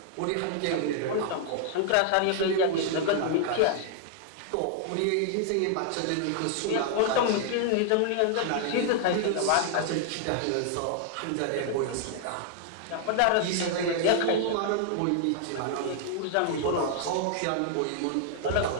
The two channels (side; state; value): both; different; correlation 0.00